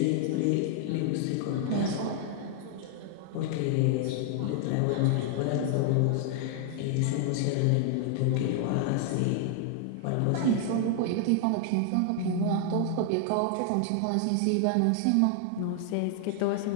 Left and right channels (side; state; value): both; different; correlation 0.00